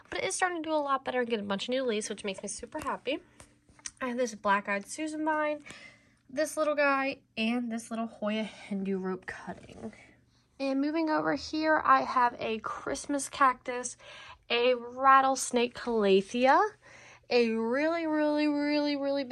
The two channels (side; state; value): both; identical; correlation 1.00